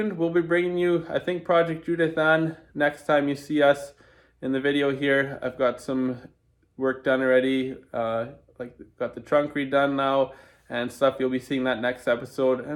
We'll be bringing you, I think, Project Judith Ann next time you see us in the video here. I've got some work done already, like got the trunk redone now and stuff. You'll be seeing that next episode,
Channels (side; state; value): both; identical; correlation 1.00